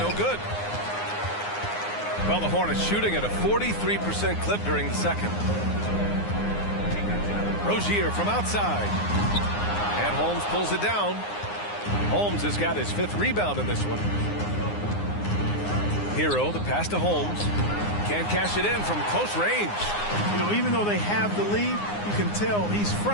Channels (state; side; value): late; right; 9.7 ms